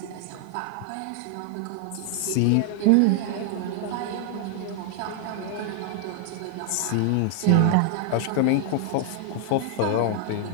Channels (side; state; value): both; different; correlation 0.00